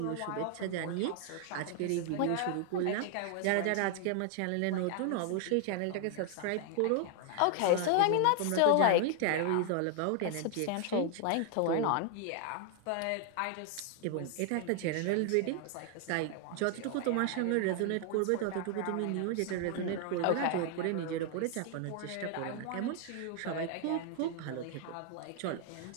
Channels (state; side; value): different; both; correlation 0.00